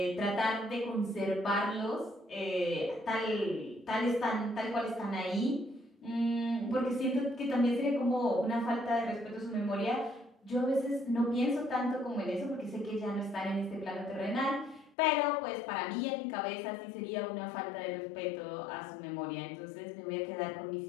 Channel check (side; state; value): right; drops out; at 15.0 s